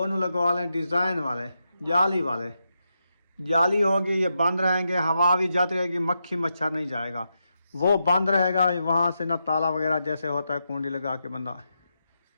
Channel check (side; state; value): both; inverted; correlation -0.85